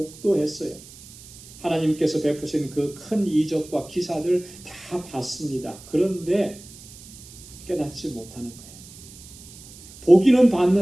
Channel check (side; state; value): right; noise; hiss, 19 dB below the sound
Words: 하나님께서 베푸신 그 큰 이적과 기사들 다 봤습니다. 그런데 깨닫지 못하는 거예요. 보기는